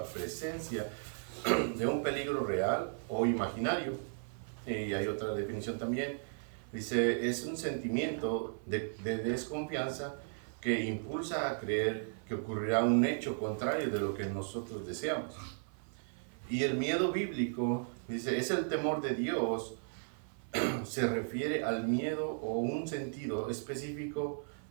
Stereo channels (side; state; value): left; silent; 54 dB below the other